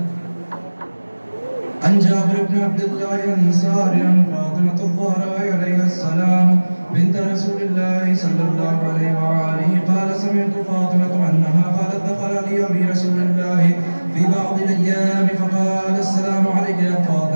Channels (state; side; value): inverted; both; correlation -1.00